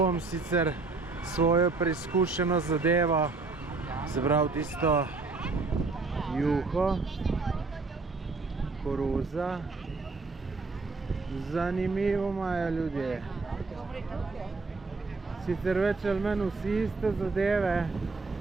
sicer svojo preizkušeno zadevo, se pravi tisto juho, koruza. Zanimivo imajo ljudje. Sicer več ali manj vsi iste zadeve.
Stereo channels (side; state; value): left; quieter; 4.0 dB